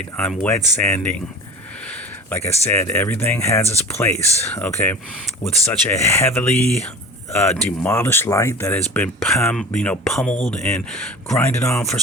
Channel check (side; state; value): both; normal; correlation 0.36